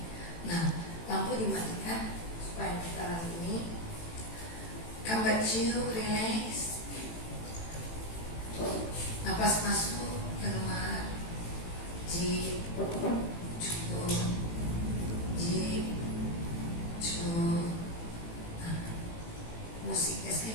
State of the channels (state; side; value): late; right; 18 ms